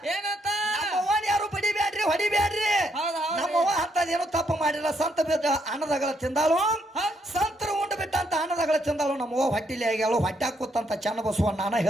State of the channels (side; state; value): both; normal; correlation 0.74